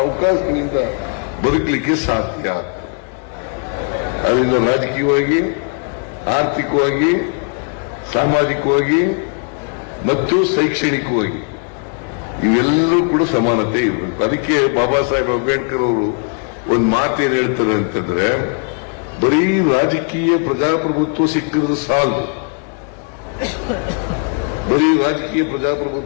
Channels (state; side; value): quieter; right; 38.4 dB